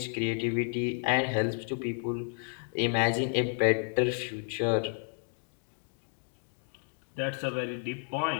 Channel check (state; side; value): silent; right; 57 dB below the other